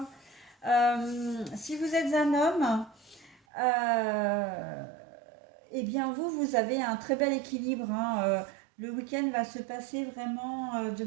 Si vous êtes un homme, euh, eh bien, vous avez un très bel équilibre, hein. Le week-end va se passer vraiment de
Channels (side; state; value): left; drops out; at 3.4 s